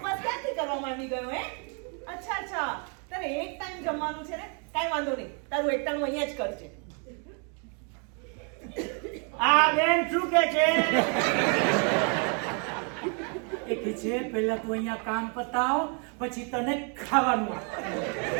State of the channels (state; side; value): quieter; left; 38.6 dB